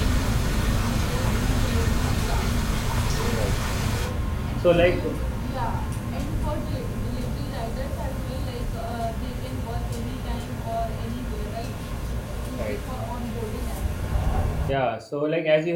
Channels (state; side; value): identical; both; correlation 1.00